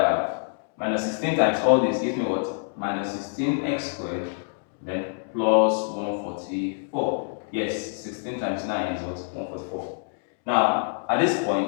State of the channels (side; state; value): right; silent; 61 dB below the other